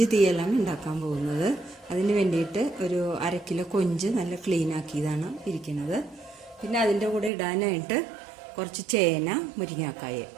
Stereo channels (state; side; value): drops out; left; at 7.3 s